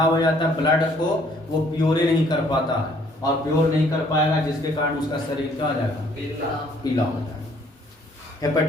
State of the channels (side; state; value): both; normal; correlation 0.62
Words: हो जाता है, ब्लड को वो प्योर नहीं कर पाता है, और प्योर नहीं कर पाएगा जिसके कारण उसका शरीर क्या हो जाएगा, पीला हो जाएगा।